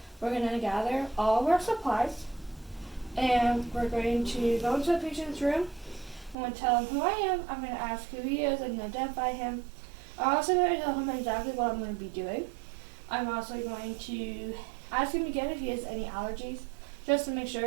we're going to gather all of our supplies and we're going to go into the patient's room. I'm going to tell him who I am. I'm going to ask who he is and identify him. I'm also going to tell him exactly what I'm going to be doing. I'm also going to ask him again if he has any allergies, just to make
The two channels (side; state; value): left; drops out; at 6.4 s